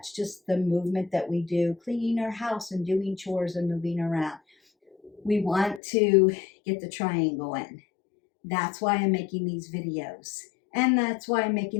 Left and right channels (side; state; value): right; drops out; at 5.8 s